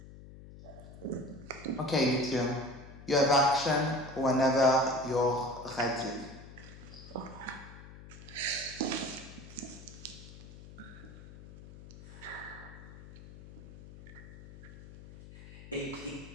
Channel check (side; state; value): left; noise; hum, 16 dB below the sound